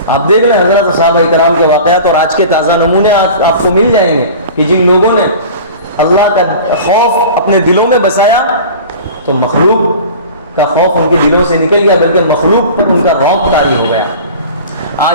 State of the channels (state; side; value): inverted; both; correlation -0.39